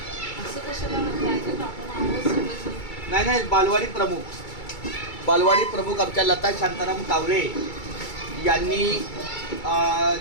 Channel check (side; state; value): right; late; 2.3 ms